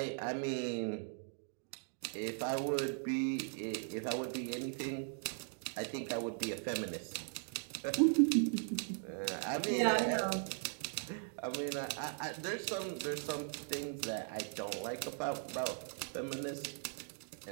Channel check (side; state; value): left; silent; 52 dB below the other